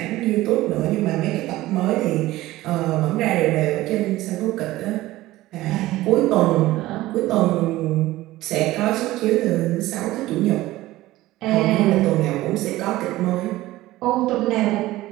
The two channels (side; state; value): left; quieter; 17.0 dB